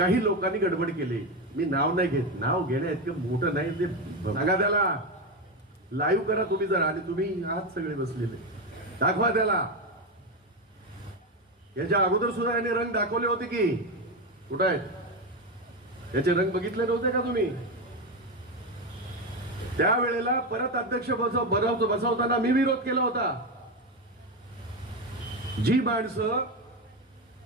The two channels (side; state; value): both; normal; correlation 0.13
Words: लोकांनी गडबड केली. मी नाव नाही घेत, नाव घेण्या इतकं मोठं नाही ते. सांगा त्याला, लाईव्ह करा तुम्ही जरा, आणि तुम्ही आहात सगळे बसलेले, दाखवा त्याला. याच्या अगोदर सुद्धा याने रंग दाखवले होते की कुठे आहेत याचे रंग बघितले नव्हते का तुम्ही? त्यावेळेला परत अध्यक्ष बसवताना मी विरोध केला होता. जी माणसं